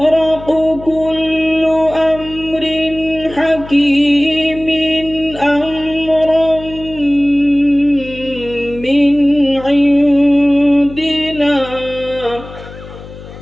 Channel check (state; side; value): noise; left; hum, 16 dB below the sound